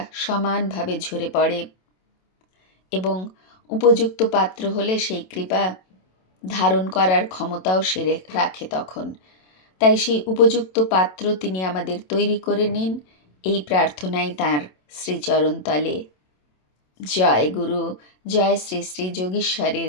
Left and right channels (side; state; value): right; late; 27 ms